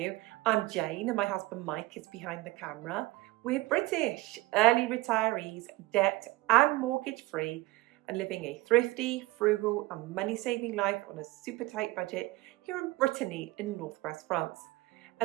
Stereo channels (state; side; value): quieter; left; 20.0 dB